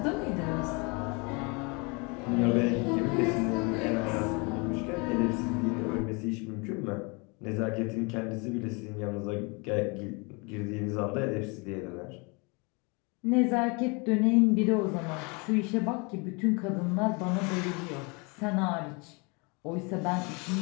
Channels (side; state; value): right; quieter; 30.2 dB